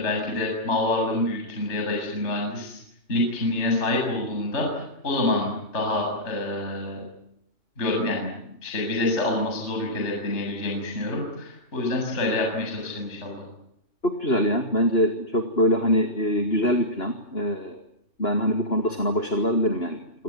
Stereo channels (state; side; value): late; right; 2.9 ms